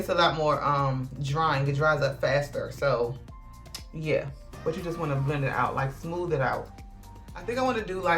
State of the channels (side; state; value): both; identical; correlation 1.00